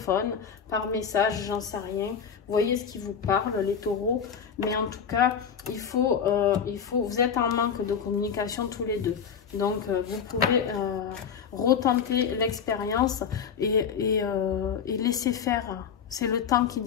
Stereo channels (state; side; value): quieter; right; 7.1 dB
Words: par message, j'en sais rien. Voyez ce qui vous parle, les taureaux. Mais en tout cas, vous êtes en manque de communication tous les deux. Donc, vous pouvez retenter l'expérience et laisser faire. C'est le temps qui